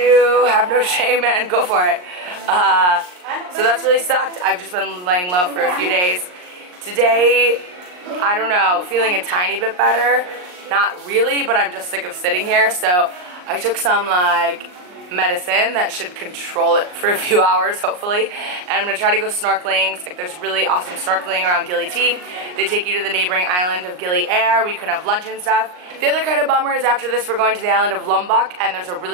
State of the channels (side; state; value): left; late; 39 ms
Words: have no shame and go for it. So that's really sucked. I've just been laying low for a few days. Today, I don't know, feeling a tiny bit better. Not really, but I'm just sick of sitting here. So I took some like medicine that should control it for a few hours, hopefully. And I'm gonna try to go snorkeling. It's like there's really awesome snorkeling around Gili T. They take you to the neighboring island of Gili where you can have lunch and stuff. The other kind of bummer is after this we're going to the island of Lombok, and there's a